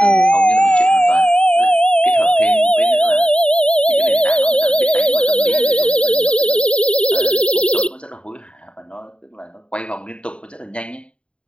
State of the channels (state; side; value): late; right; 0.057 ms